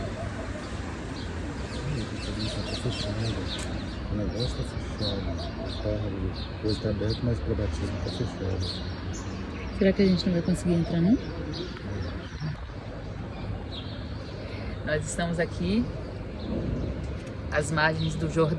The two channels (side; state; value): both; identical; correlation 1.00